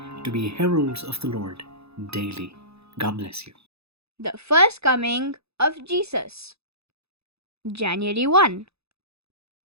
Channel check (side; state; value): left; late; 0.79 ms